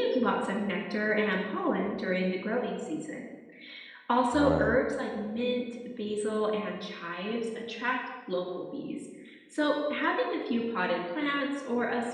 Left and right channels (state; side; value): identical; both; correlation 1.00